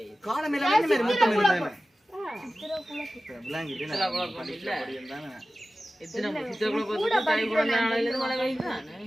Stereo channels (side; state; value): both; normal; correlation 0.95